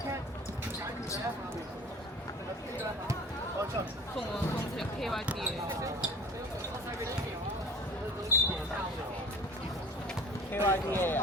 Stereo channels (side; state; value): both; normal; correlation 0.43